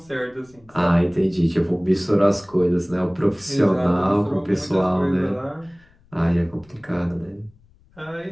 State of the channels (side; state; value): left; noise; rumble, 30 dB below the sound